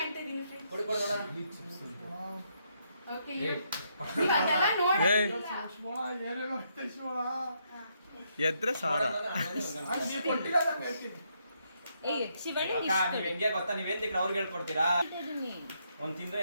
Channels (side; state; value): both; inverted; correlation -0.76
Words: ಇದೀನಿ ಫ್ರೆಂಡ್ಸ್. ಕೊಡಿ ಕೊಡಿ ನೋಡ. ಓಕೆ ಅದೆಲ್ಲ ನೋಡಿ ಶಿವಣ್ಣ ಏನೇನೋ ಐತೆ ಶಿವಣ್ಣ. ಎದ್ರೆ ಸಾರ ನೀ ಕೊಟ್ಟಿಲ್ಲ ನಾನು ಹೇಳ್ತೀನಿ. ಏಯ್ ಶಿವಣ್ಣ ಅಕ್ಕ ನೀವ್ ಹೆಂಗೆ ಗೊತ್ತಾ, ನೀವೇನ್ ತಿಂದ್ರೆ ಅವ್ರಿಗೆ ಹೇಳ್ಕೊಡ್ತೀರಾ? ಒಂದ್ ತಿಂದ್ರೆ